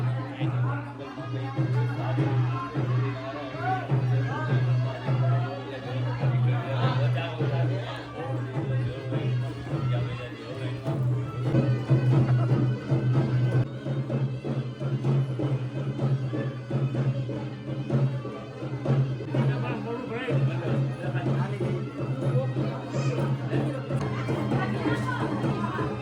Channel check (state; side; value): identical; both; correlation 1.00